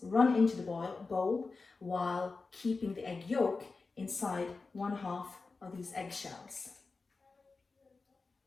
run into the bowl while keeping the egg yolk inside 1/2 of these eggshells.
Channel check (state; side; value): quieter; right; 4.1 dB